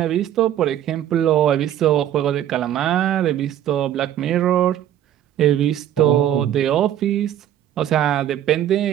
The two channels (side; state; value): left; quieter; 11.2 dB